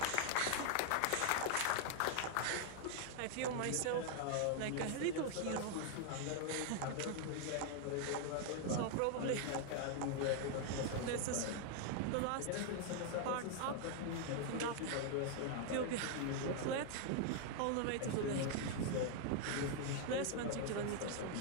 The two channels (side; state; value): both; different; correlation 0.00